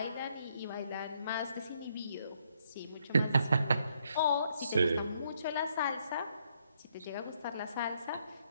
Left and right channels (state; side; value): inverted; both; correlation -0.73